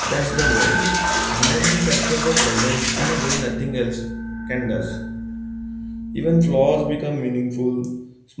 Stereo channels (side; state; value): both; identical; correlation 1.00